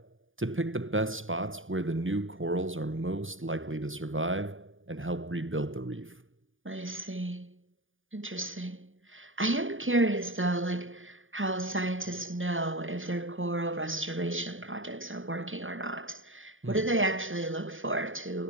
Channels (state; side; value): late; left; 0.58 ms